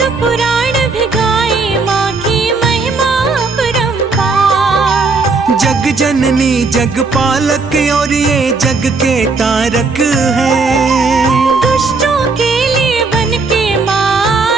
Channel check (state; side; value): quieter; left; 4.1 dB